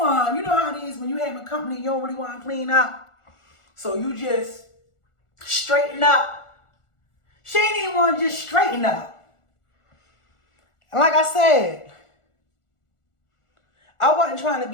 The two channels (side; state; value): right; late; 1.4 ms